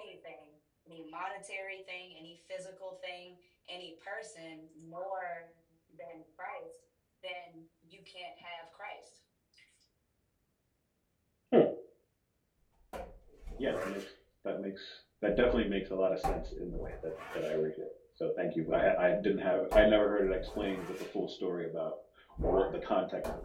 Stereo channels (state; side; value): identical; both; correlation 1.00